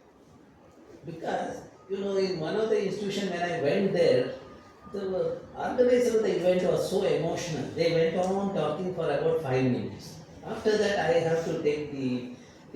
Because, you know, in one of the institutions when I went there, the organizer of the event was so emotional. They went on talking for about 5 minutes. After that, I have to take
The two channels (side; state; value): both; identical; correlation 1.00